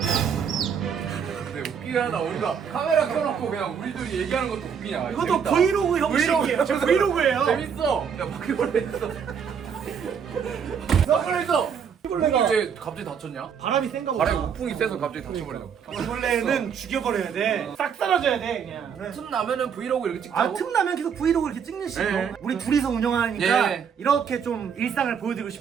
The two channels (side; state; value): left; quieter; 7.2 dB